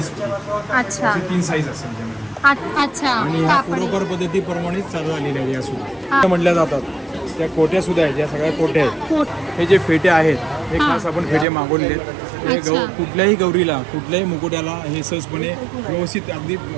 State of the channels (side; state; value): left; drops out; at 11.5 s